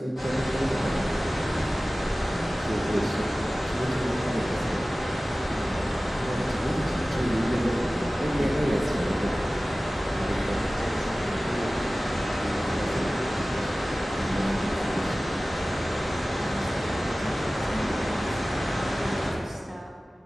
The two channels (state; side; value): normal; both; correlation 0.97